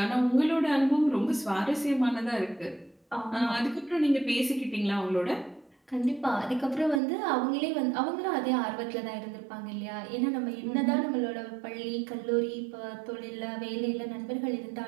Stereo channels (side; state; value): left; drops out; at 7.0 s